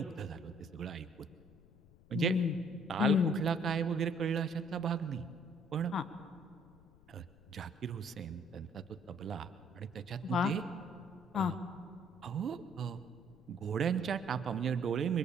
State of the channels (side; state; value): left; noise; rumble, 25 dB below the sound